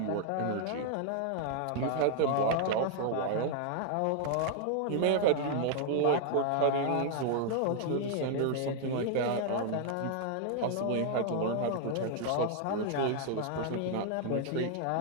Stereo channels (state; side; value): different; both; correlation 0.00